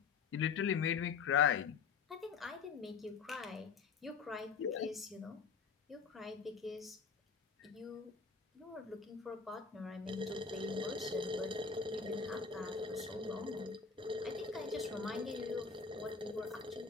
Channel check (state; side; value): quieter; right; 5.4 dB